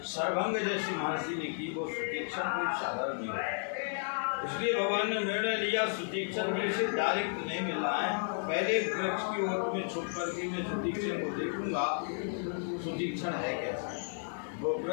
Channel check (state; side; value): silent; right; 56 dB below the other